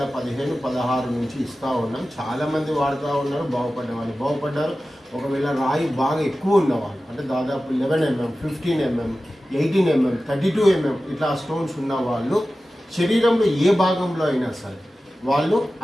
నుంచి ఇస్తూ ఉన్నాం. చాలామంది వాడుతూ ఉన్నారు, బాగుపడ్డారు. ఒకవేళ రాయి బాగా ఎక్కువ ఉన్నవాళ్ళు అంటే దాదాపు 11 mm, 15 mm, 18 mm, 32 mm ఇట్లా స్టోన్స్ ఉన్న వాళ్ళు శరీరంలో ఏ భాగంలో అయినా సరే వాళ్ళు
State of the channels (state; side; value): normal; both; correlation 0.95